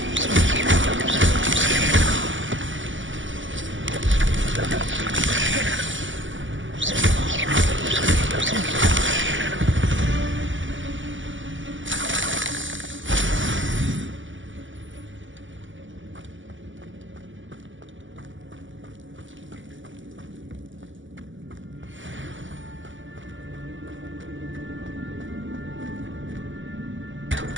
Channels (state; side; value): late; left; 0.56 ms